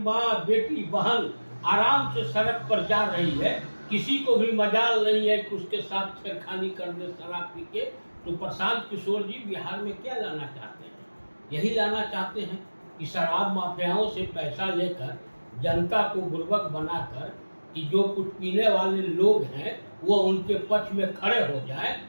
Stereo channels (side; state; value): both; inverted; correlation -1.00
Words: बेटी, बहन आराम से सड़क पर जा रही है, किसी को भी मजाल नहीं है कि उसके साथ छेड़खानी कर दे शराब पी के। तो प्रशांत किशोर जी बिहार में क्या लाना चाहते हैं? यही लाना चाहते हैं कि शराब माफियाओं से पैसा लेकर जनता को बुर्बक बनाकर कि जो कुछ पीने वाले लोग हैं वो उनके पक्ष में खड़े हो जाए